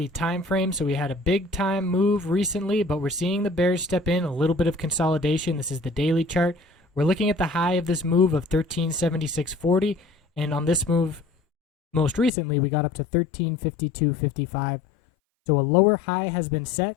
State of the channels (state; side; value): drops out; right; at 12.3 s